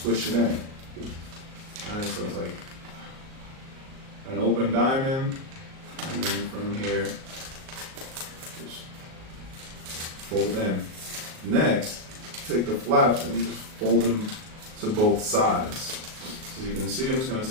it in. Alright, so it's like an open diamond, and then from here, just fold in. Next, take the flaps and just fold them to both sides. As you can see, I'm just going to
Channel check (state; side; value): late; left; 38 ms